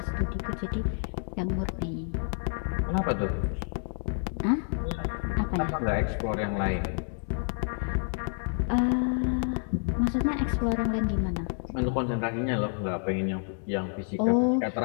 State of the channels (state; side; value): silent; right; 59 dB below the other